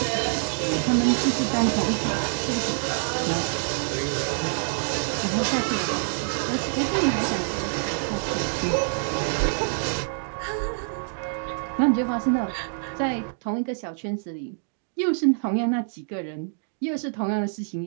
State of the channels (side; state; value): left; silent; digital silence